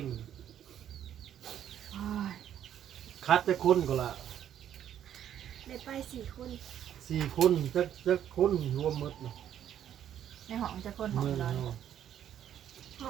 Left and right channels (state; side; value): quieter; left; 10.3 dB